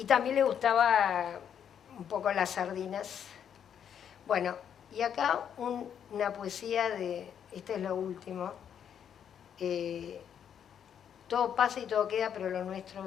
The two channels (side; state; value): right; quieter; 8.6 dB